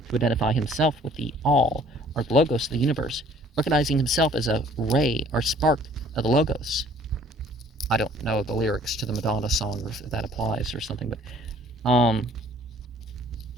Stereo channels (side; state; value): both; normal; correlation 0.56